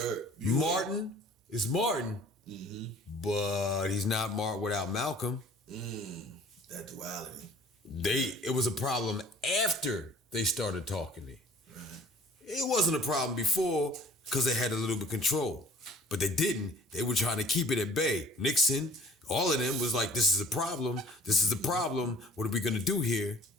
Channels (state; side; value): normal; both; correlation 0.51